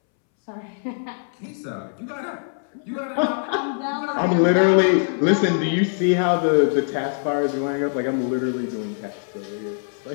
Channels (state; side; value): silent; right; 64 dB below the other